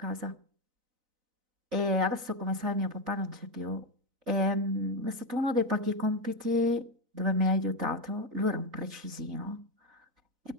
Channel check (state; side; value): late; left; 4.0 ms